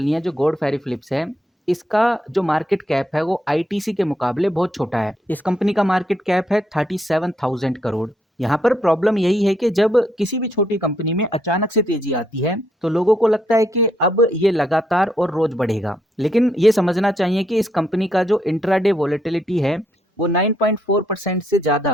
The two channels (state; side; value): normal; both; correlation 0.75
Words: है, जो गॉड फेरे फिलिप्स है इसका जो मार्केट कैप है वो आईटीसी के मुकाबले बहुत छोटा है। इस कंपनी का मार्केट कैप है 37,000 करोड़। यहाँ पर प्रॉब्लम यही है कि जब किसी भी छोटी कंपनी में अचानक से तेजी आती है तो लोगों को लगता है कि अब ये लगातार और रोज बढ़ेगा, लेकिन ये समझना चाहिए कि इस कंपनी का जो इंट्राडे वोलेटिलिटी है वो 9.4% से